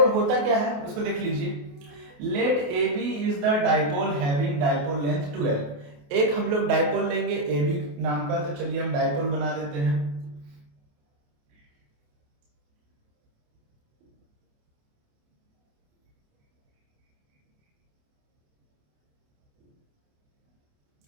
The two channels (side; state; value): left; late; 28 ms